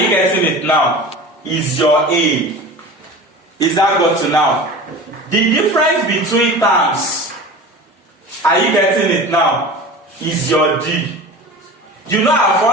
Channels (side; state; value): both; normal; correlation 0.35